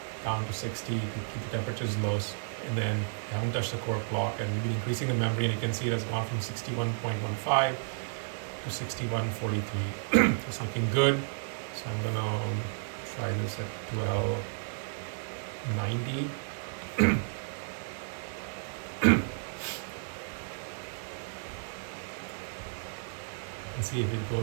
down to 60 to keep the temperatures low, and then we haven't touched the core clock, and we've been increasing the memory, and you can see it has gone from 61.15 to 61.43. It's looking good. So I'm gonna try this at 1290. and see if it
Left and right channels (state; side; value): silent; left; digital silence